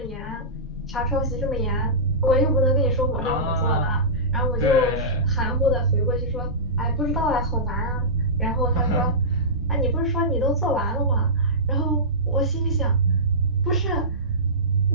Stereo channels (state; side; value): normal; both; correlation -0.18